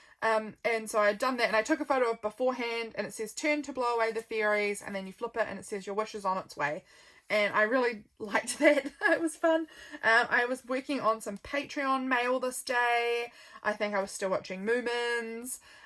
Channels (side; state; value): both; identical; correlation 1.00